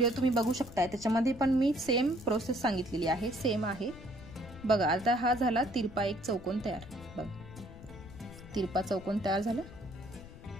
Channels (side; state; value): left; noise; rumble, 16 dB below the sound